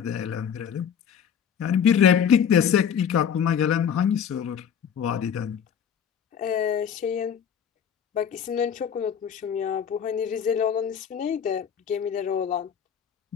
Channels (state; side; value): quieter; right; 8.0 dB